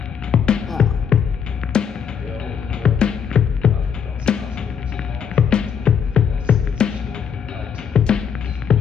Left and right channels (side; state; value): right; quieter; 7.4 dB